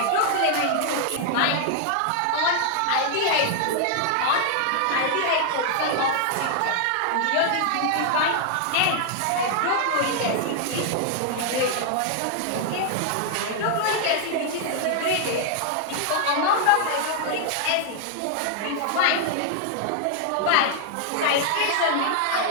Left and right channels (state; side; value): different; both; correlation 0.00